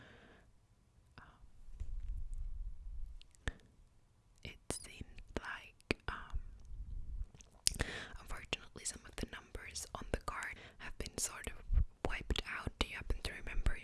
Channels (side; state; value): both; identical; correlation 1.00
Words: It seems like unfortunately some of the numbers on the card have been sort of wiped out. Do you happen to remember